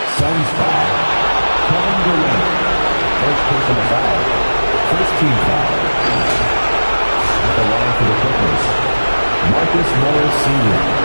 Suns foul. Kevin Durant. First personal foul. First team foul. At the line for the Clippers, Marcus Morris Sr.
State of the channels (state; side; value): inverted; both; correlation -1.00